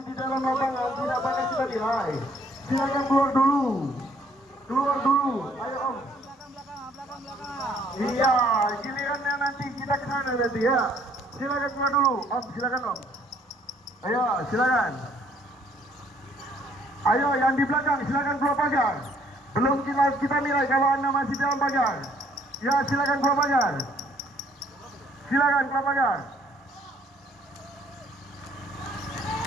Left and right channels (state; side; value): normal; both; correlation 0.63